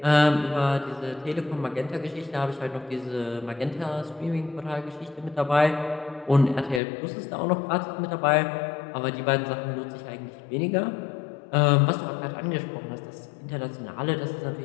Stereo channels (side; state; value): right; drops out; at 6.8 s